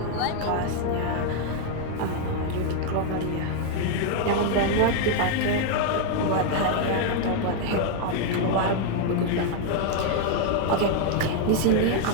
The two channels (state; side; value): different; both; correlation 0.00